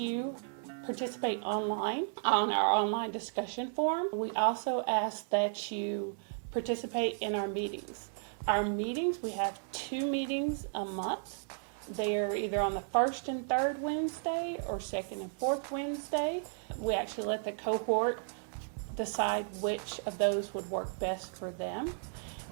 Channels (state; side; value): silent; left; digital silence